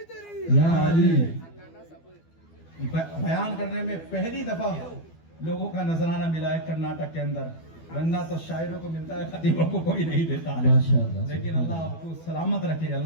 یا علی بیان کرنے میں پہلی دفعہ لوگوں کا نذرانہ ملا ہے کرناٹک کے اندر, ورنہ تو شاعروں کو ملتا ہے خطیبوں کو کوئی نہیں دیتا ہے. لیکن اللہ آپ کو سلامت رکھے,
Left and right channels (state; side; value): late; right; 12 ms